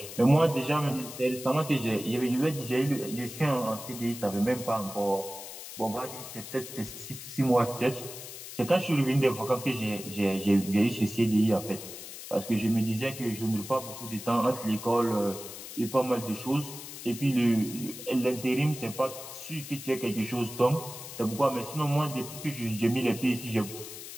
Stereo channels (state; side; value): noise; left; hiss, 11 dB below the sound